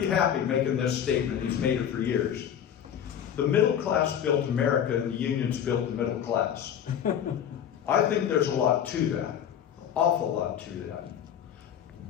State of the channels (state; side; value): quieter; right; 9.3 dB